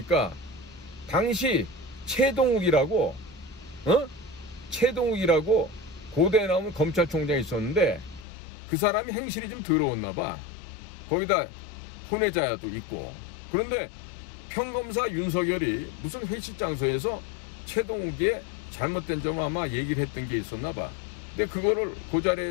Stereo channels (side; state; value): right; drops out; at 8.2 s